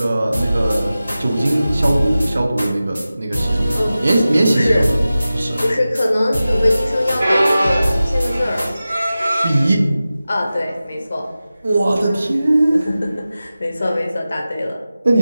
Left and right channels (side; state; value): both; inverted; correlation -0.95